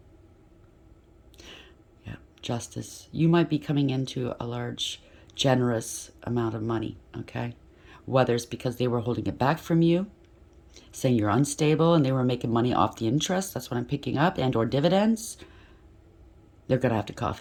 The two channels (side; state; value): both; identical; correlation 1.00